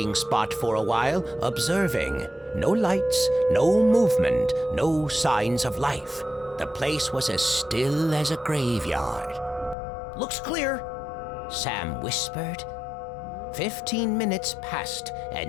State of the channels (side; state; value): right; drops out; at 9.8 s